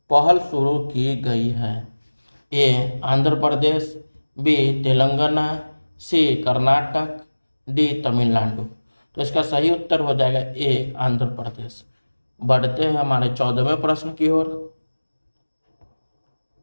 पहल शुरू की गई है? ए आंध्र प्रदेश, बी तेलंगाना, सी कर्नाटक, डी तमिलनाडु। तो इसका सही उत्तर हो जाएगा ए आंध्र प्रदेश। बढ़ते हैं हमारे 14वें प्रश्न की ओर।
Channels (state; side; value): inverted; both; correlation -1.00